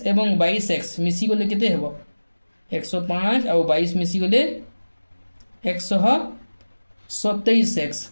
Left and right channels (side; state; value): both; inverted; correlation -1.00